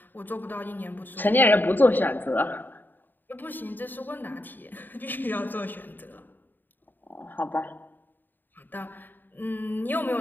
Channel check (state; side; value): late; right; 0.091 ms